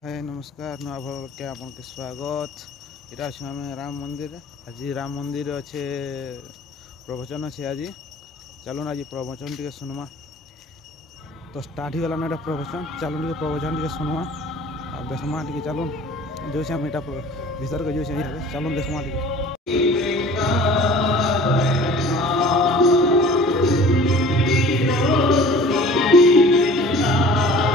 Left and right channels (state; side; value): normal; both; correlation 0.46